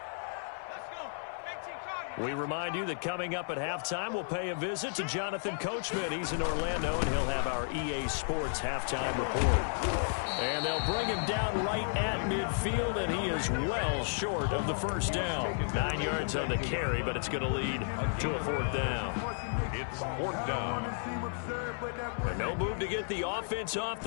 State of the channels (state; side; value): silent; right; 56 dB below the other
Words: We remind you that coming up at halftime, we'll pay a visit to Jonathan Coachman. He's in Orlando, and he'll have our EA Sports halftime report. And they'll bring him down right at midfield, and he is well short of the first down. 9 yards on the carry, but it's going to lead to a 4th down. It's 4th down. And no move to get the offense off